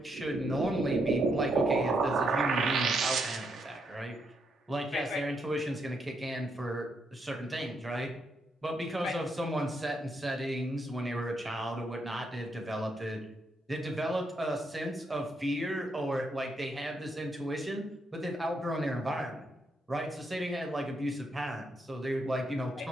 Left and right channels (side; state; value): both; normal; correlation 0.78